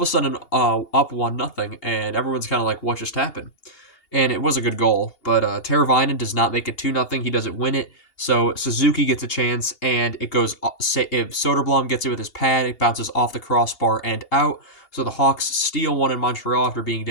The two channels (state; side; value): late; right; 2.8 ms